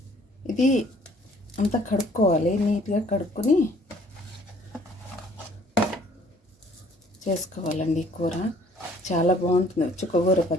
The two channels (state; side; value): normal; both; correlation 0.58